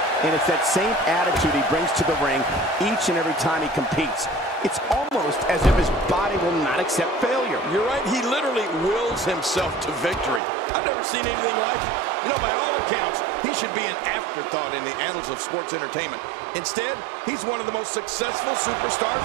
And it's that same attitude he brings to the ring each and every time he competes. It's almost as if his body will not accept failure. You're right, he literally wills himself to victory. I've never seen anything like it. You know, by all accounts, he should be an afterthought in the annals of sports entertainment. Instead, he's one of the most successful superstars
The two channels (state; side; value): drops out; left; at 10.4 s